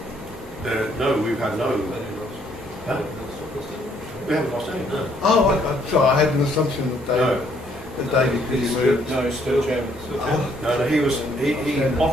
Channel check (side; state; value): both; normal; correlation 0.67